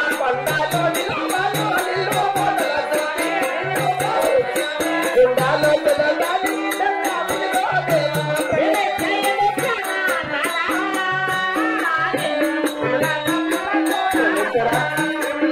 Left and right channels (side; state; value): both; identical; correlation 1.00